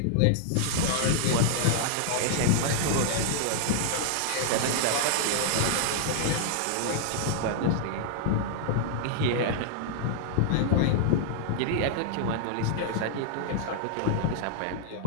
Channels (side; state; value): both; different; correlation -0.01